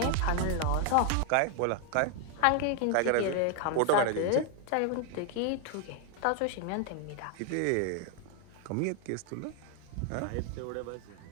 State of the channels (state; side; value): different; both; correlation 0.00